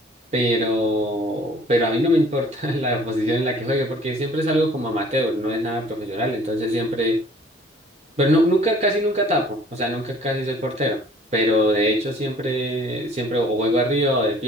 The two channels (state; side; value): normal; both; correlation 0.53